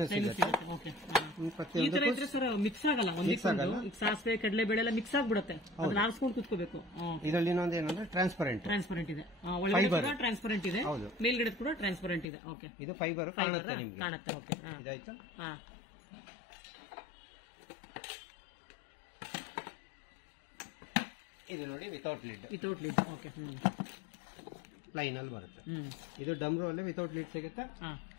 ಸಿಗುತ್ತೆ. ಮಿಕ್ಸ್ ಆಗಲ್ಲ, ಸಾಸಿವೆ ಕಡಲೆಬೇಳೆ ಎಲ್ಲ ಮಿಕ್ಸ್ ಆಗ್ಬಿಡುತ್ತೆ, ಅದನ್ನ ಆರಿಸ್ಕೊಂಡು ಕುತ್ಕೋಬೇಕು. ಇದರಲ್ಲಿ ಇನ್ನೊಂದು ಏನಂದ್ರೆ ಟ್ರಾನ್ಸ್ಪರೆಂಟ್ ಇದೆ, ಒಳಗಡೆ ಟ್ರಾನ್ಸ್ಪರೆಂಟ್ ಇದೆ, ಮೇಲ್ಗಡೆ ಕೂಡ ಟ್ರಾನ್ಸ್ಪರೆಂಟ್ ಇದೆ. ಓಕೆ, ಇದು ಫೈಬರ್ ಕಾಣುತ್ತೆ ನಿಮ್ಗೆ. ಕಾಣುತ್ತೆ. ಓಕೆ, ಇದಾಯ್ತು. ಇದು ನೋಡಿ ವಿತೌಟ್ ಲಿಡ್. ಓಕೆ, ಪ್ಲೈನ್ ಅಲ್ಲಿ ಬರುತ್ತೆ. ಇದು ಡಮ್ರು ಅಲ್ಲಿ ವಿತೌಟ್ ಲಿಡ್ ಸಿಗುತ್ತೆ,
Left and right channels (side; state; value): right; drops out; at 12.2 s